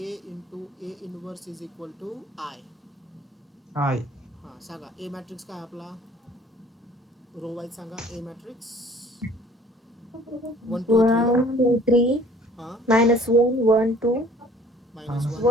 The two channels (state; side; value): normal; both; correlation 0.52